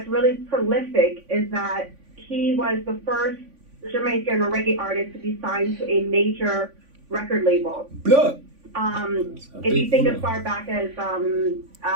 really prolific, is that he was the first Jamaican reggae artist to be signed to a major record label. Blood. If you think as far back as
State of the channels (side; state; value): left; late; 3.5 ms